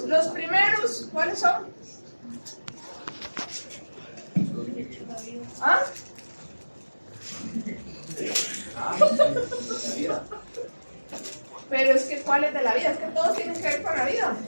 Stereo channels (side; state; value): both; inverted; correlation -1.00